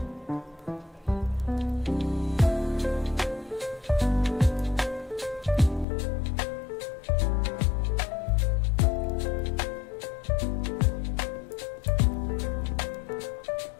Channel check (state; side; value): drops out; right; at 5.9 s